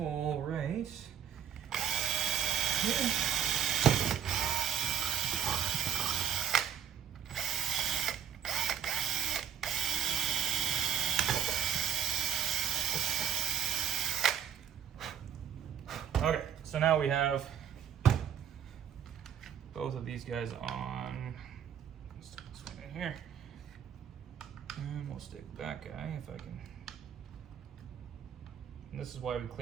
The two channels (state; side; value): quieter; left; 8.6 dB